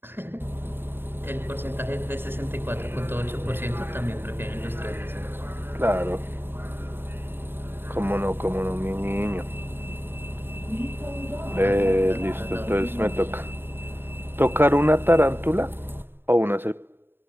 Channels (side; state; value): left; late; 0.10 ms